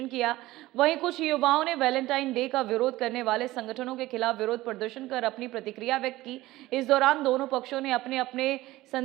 किया। वहीं कुछ युवाओं ने वैलेंटाइन डे का विरोध करने वाले संगठनों के खिलाफ विरोध प्रदर्शन कर अपनी प्रतिक्रिया व्यक्त की। इस दौरान दोनों पक्षों ने अपने अपने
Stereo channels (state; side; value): quieter; left; 17.5 dB